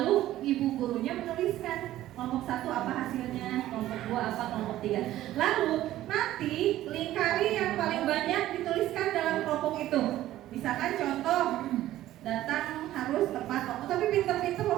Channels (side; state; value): left; quieter; 14.2 dB